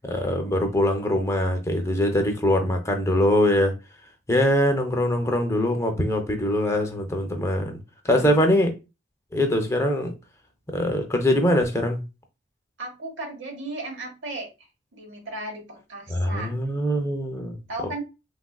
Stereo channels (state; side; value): normal; both; correlation 0.63